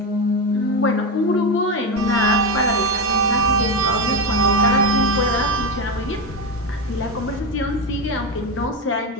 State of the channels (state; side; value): normal; both; correlation 0.14